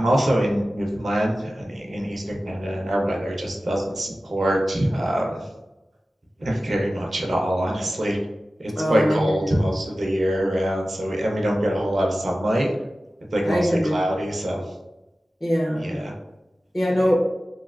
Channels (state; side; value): normal; both; correlation 0.95